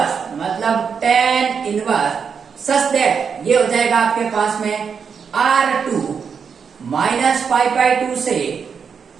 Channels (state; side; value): quieter; left; 6.4 dB